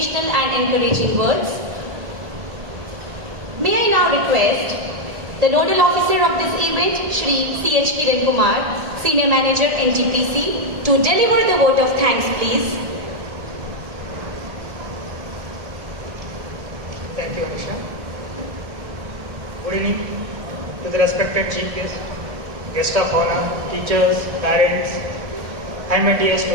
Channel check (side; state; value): left; late; 1.8 ms